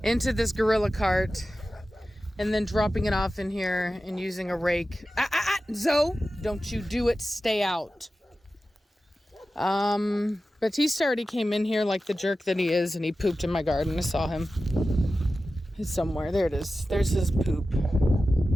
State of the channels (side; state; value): both; normal; correlation 0.94